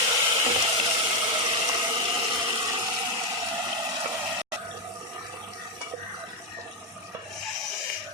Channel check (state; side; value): normal; both; correlation 0.05